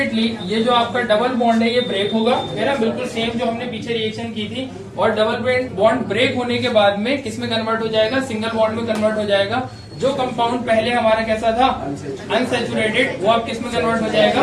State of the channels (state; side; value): identical; both; correlation 1.00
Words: ये जो आपका डबल बॉन्ड है ये ब्रेक होगा, है ना, बिल्कुल सेम जो हमने पीछे रिएक्शन की थी। और डबल बॉन्ड ब्रेक होने के बाद में किस में कन्वर्ट हो जाएगा? सिंगल बॉन्ड में कन्वर्ट हो जाएगा। जो कंपाउंड पहले हमारा कैसा था? अनसैचुरेटेड, वो अब किस में कन्वर्ट हो जाएगा?